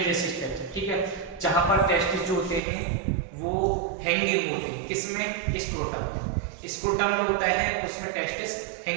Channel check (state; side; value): drops out; left; at 2.6 s